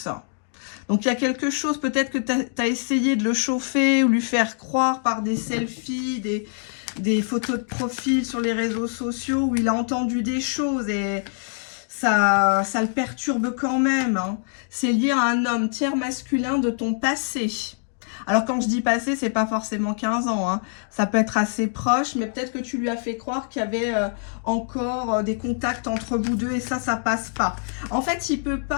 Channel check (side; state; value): right; silent; digital silence